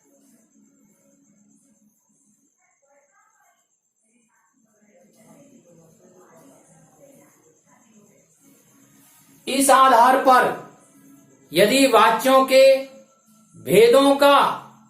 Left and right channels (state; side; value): identical; both; correlation 1.00